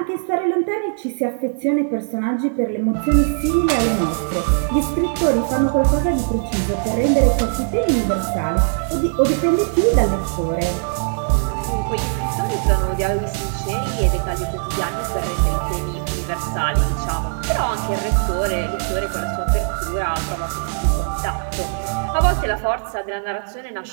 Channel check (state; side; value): silent; left; 65 dB below the other